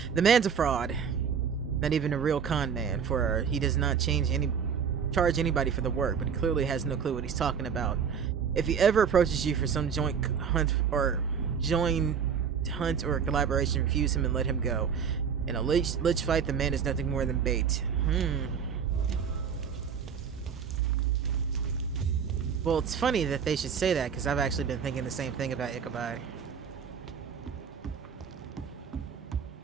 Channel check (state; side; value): quieter; left; 7.0 dB